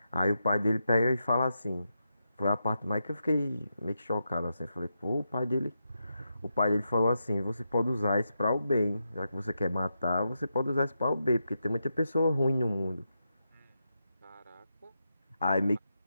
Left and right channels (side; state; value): both; inverted; correlation -0.86